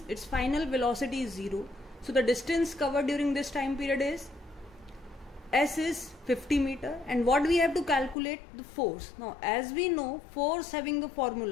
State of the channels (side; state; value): right; drops out; at 8.2 s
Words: its final velocity is 0, so the distance covered during this time period is s is 50 meter. And what we have to calculate? The force. Now as we know, force having the